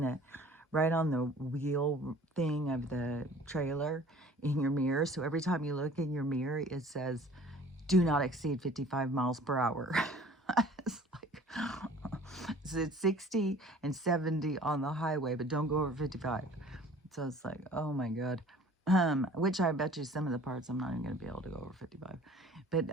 the wheel thing of the trailer in your mirror. So every time you look in your mirror, it says, do not exceed 55 miles per hour. It's like, so it's 60 and 70 on the highway, but don't go over 55. So it's like, oh my God. Which I bet you some of the parts I'm not even going to be able to go over 55. But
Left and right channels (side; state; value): both; normal; correlation 0.49